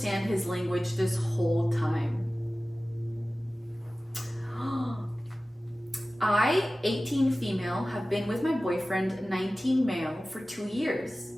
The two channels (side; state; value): both; normal; correlation 0.96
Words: his language this whole time? I, 18 female, have been with my boyfriend, 19 male, for 2 years.